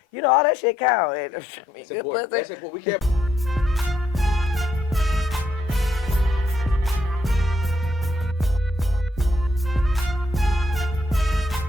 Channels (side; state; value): both; normal; correlation 0.75